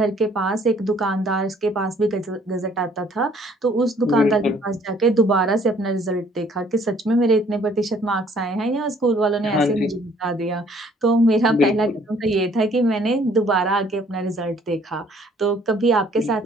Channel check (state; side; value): normal; both; correlation 0.60